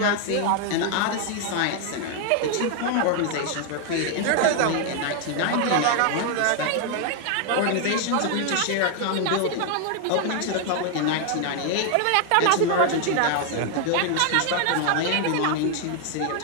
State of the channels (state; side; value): different; both; correlation 0.00